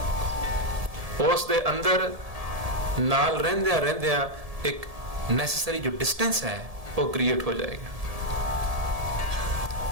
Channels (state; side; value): late; left; 1.7 ms